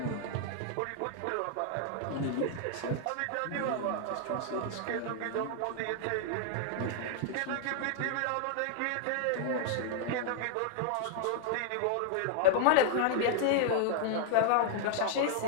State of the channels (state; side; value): different; both; correlation 0.00